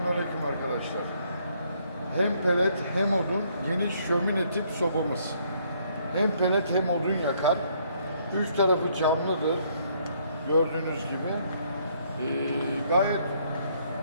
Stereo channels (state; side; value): inverted; both; correlation -0.68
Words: arkadaşlar. Hem pelet hem odun geniş şömine tip sobamız. Hem pelet hem odun yakar. Üç tarafı camlıdır. Gördüğünüz gibi. Gayet